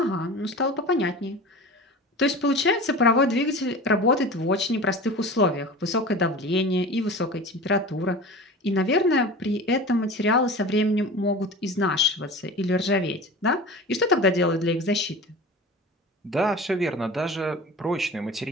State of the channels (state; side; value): normal; both; correlation 0.35